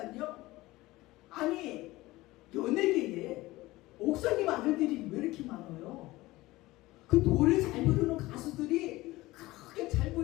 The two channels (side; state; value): right; quieter; 18.9 dB